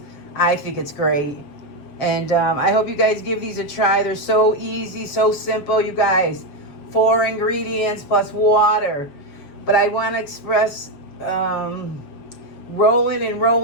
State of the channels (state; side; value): late; right; 7.1 ms